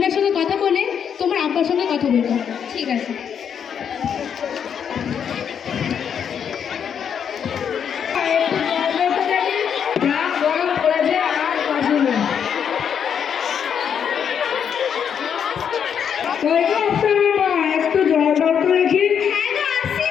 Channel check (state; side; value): quieter; right; 7.8 dB